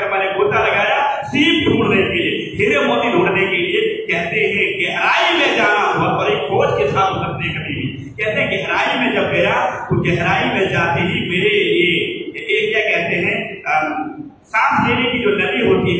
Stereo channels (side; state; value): both; identical; correlation 1.00